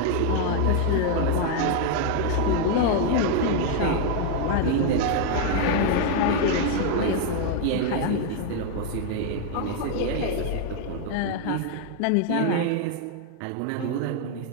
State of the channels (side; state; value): both; different; correlation 0.00